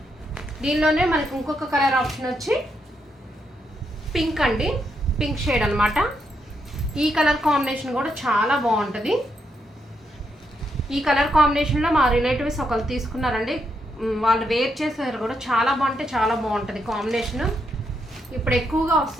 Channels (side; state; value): both; normal; correlation 0.80